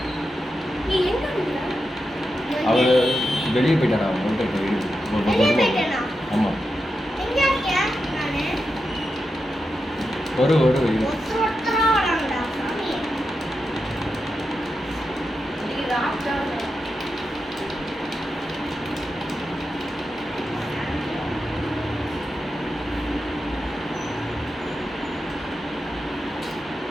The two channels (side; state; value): both; normal; correlation 0.89